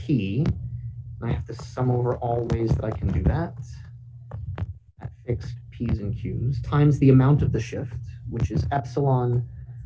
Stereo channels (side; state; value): both; identical; correlation 1.00